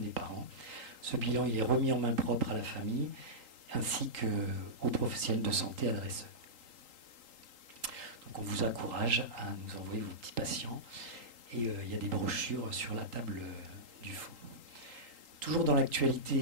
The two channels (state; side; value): late; left; 3.8 ms